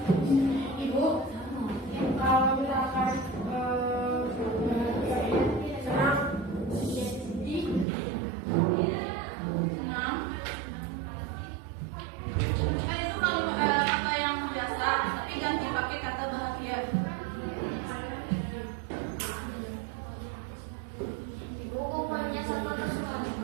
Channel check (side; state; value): left; drops out; at 7.9 s